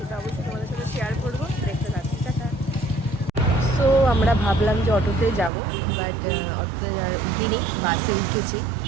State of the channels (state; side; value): drops out; left; at 5.5 s